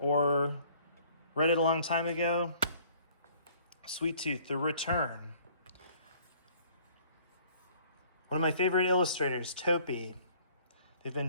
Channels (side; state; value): both; inverted; correlation -0.56